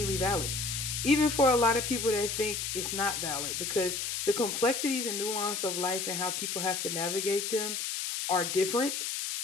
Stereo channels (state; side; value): noise; left; hiss, 2 dB below the sound